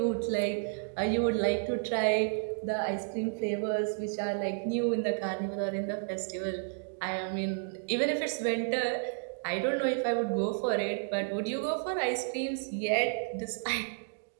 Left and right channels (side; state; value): left; silent; digital silence